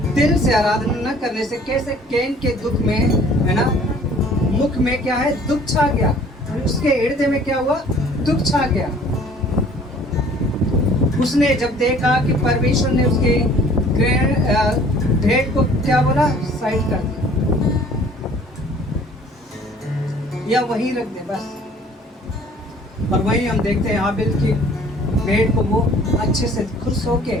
दिल से आराधना न करने से कैसे कैन के दुख में, है ना, मुख में क्या है, दुख छा गया। उसके हृदय में क्या हुआ, दुख छा गया। उसने जब देखा कि परमेश्वर ने उसके भेंट को क्या बोला, साइड कर दिया या वहीं रख दे बस। और वहीं हम देखते हैं हाबिल की भेंट को वो अच्छे से खुश होके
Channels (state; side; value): normal; both; correlation 0.53